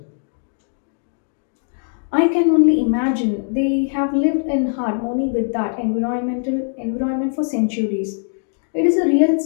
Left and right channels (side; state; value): right; silent; digital silence